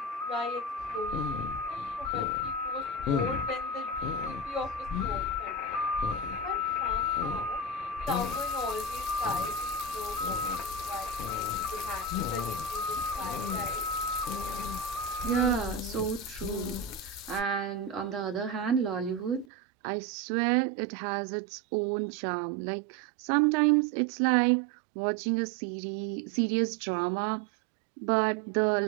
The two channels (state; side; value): drops out; left; at 19.5 s